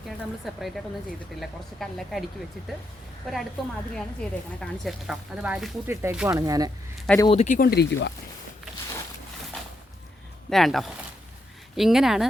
നമ്മൾ സെപ്പറേറ്റ് ആയിട്ടൊന്നും ചെയ്തിട്ടില്ല. കുറച്ച് കല്ലൊക്കെ അടുക്കി വെച്ചിട്ട് ഒരടുപ്പ് മാതിരിയാണ് ചെയ്തേക്കണത്. കാണിച്ചു കേട്ടോ, അത് വാരിക്കൂട്ടി ഇട്ടേക്കുവാണ്. ഞാൻ അത് ഒതുക്കിക്കൊണ്ടിരിക്കുക. വേണ്ടോ, ഇങ്ങനെയാണ്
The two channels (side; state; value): both; normal; correlation 0.81